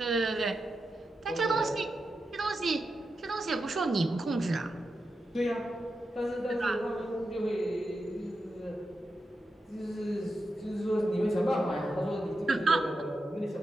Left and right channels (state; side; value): normal; both; correlation 0.89